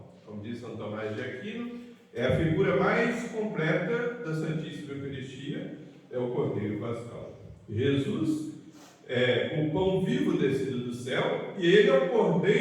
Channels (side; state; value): both; identical; correlation 1.00